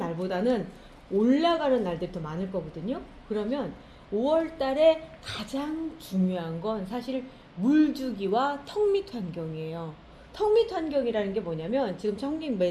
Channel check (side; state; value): both; identical; correlation 1.00